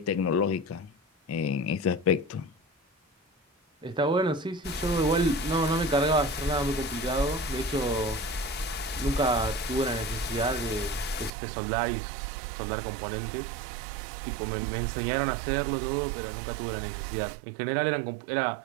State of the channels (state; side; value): drops out; left; at 11.3 s